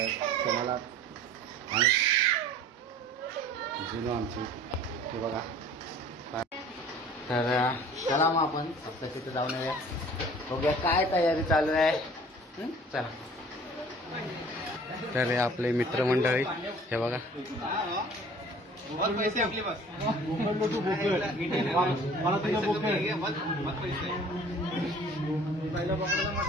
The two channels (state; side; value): normal; both; correlation 0.48